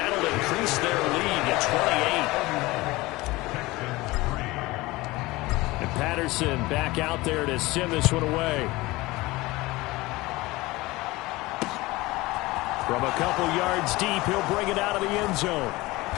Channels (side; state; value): right; quieter; 20.6 dB